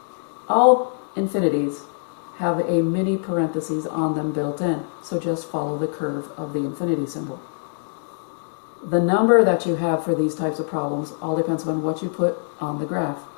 all infinities have a mini parentheses on them built in. So just follow the curve of the infinity symbol. The number that you have for these types of problems all depends on what you put on the graph.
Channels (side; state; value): right; silent; digital silence